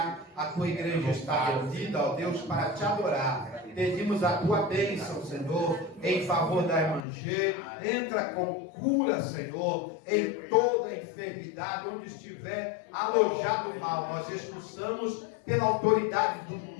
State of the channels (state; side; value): drops out; right; at 7.1 s